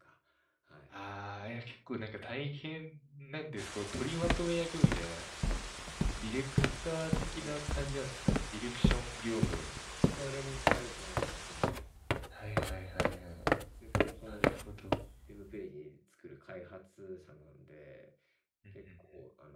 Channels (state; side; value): identical; both; correlation 1.00